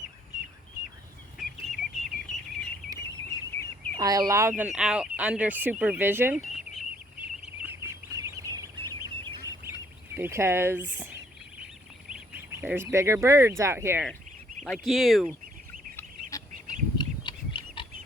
I allow them out under supervision because there's bigger birds out here, like you.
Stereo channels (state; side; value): normal; both; correlation 0.64